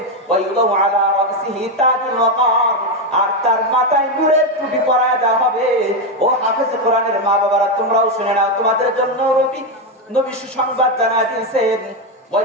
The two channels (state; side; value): normal; both; correlation 0.07